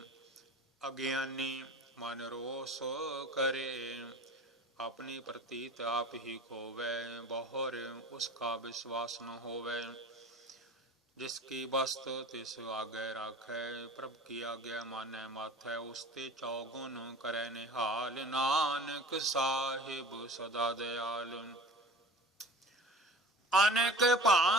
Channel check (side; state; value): both; normal; correlation 0.40